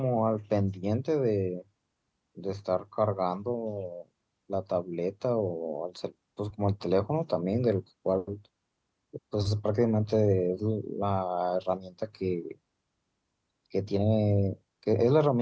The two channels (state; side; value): identical; both; correlation 1.00